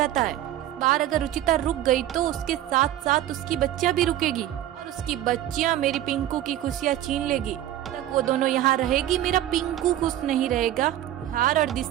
है। इस बार अगर रुचिता रुक गई तो उसके साथ साथ उसकी बच्चियां भी रुकेगी और उसकी बच्चियां मेरी पिंकू की खुशियां छीन लेगी। तक वो दोनों यहाँ रहेगी, मेरा पिंकू खुश नहीं रहेगा। निहार और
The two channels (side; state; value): left; quieter; 12.9 dB